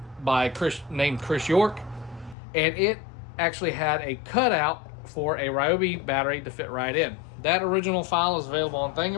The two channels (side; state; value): right; drops out; at 2.4 s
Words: named Chris York, and it actually had a cutout for a Ryobi battery to fit right in. That original file is available on